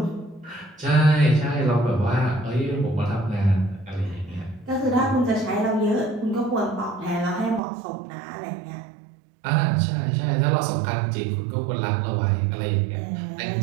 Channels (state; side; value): drops out; left; at 7.6 s